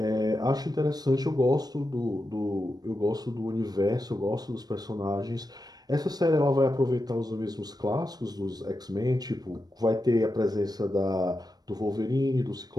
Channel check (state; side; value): late; left; 0.19 ms